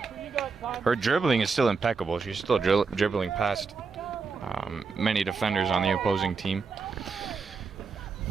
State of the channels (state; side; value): quieter; left; 4.9 dB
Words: Her dribbling is still impeccable. She's still dribbling past many defenders on the opposing team.